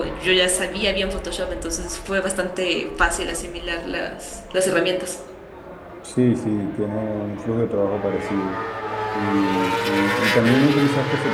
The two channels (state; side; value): identical; both; correlation 1.00